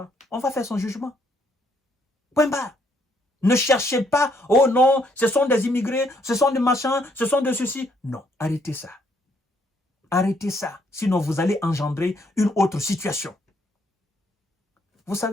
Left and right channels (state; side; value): normal; both; correlation 0.70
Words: On va faire son jugement. Point barre. Ne cherchez pas, oh non, ce sont des immigrés, ce sont des machins, ce sont de ceci. Non, arrêtez ça. Arrêtez ça, sinon vous allez engendrer une autre situation. Vous